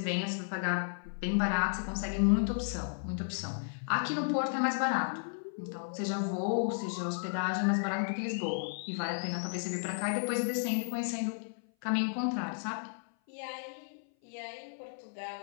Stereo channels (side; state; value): right; silent; 55 dB below the other